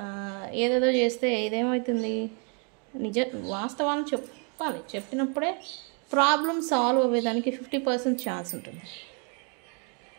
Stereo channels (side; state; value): left; quieter; 37.2 dB